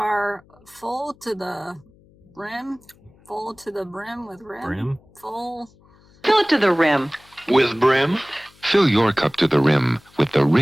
full to the brim. Full to the brim with rim. Brim? Full. Fill it to the rim. With brim? Fill your cup to the rim with the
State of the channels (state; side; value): noise; left; hum, 29 dB below the sound